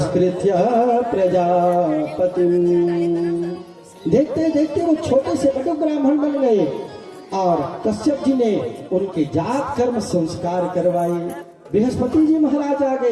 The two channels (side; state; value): both; identical; correlation 1.00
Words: प्रजापति। देखते देखते वो छोटे से बड़े ब्राह्मण बन गए और कश्यप जी ने उनके जात कर्म संस्कार करवाए। बृहस्पति जी महाराज आ गए,